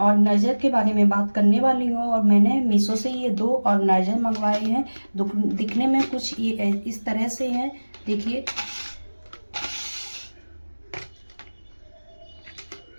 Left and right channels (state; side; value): inverted; both; correlation -1.00